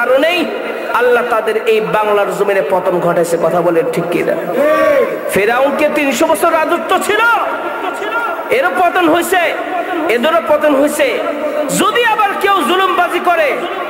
আল্লাহ তাদের এই বাংলার জমিনে পতন ঘটাইছে। কথা বলেন ঠিক কিনা? ফেরাউনকে 300 বছর রাজত্ব ছিল, এরও পতন হয়েছে, এদেরও পতন হয়েছে। যদি আবার কেউ জুলুমবাজি করে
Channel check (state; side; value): identical; both; correlation 1.00